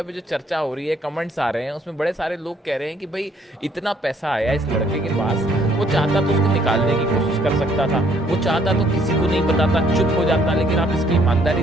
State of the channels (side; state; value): both; normal; correlation 0.65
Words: पे जो चर्चा हो रही है, कमेंट्स आ रहे हैं, उसमें बड़े सारे लोग कह रहे हैं कि भाई इतना पैसा आया इस लड़के के पास, वो चाहता तो उसको निकालने की कोशिश कर सकता था, वो चाहता तो किसी को नहीं बताता, चुप हो जाता। लेकिन आप इसकी ईमानदारी